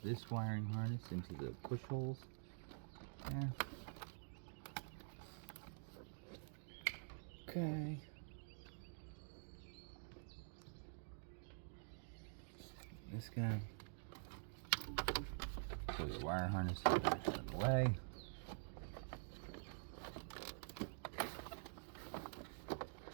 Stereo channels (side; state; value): left; silent; digital silence